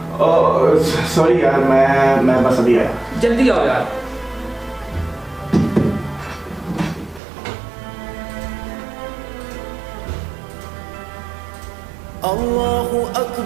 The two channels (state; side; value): drops out; left; at 7.2 s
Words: सॉरी यार, मैं बस अभी आया। जल्दी आओ यार। अल्लाहु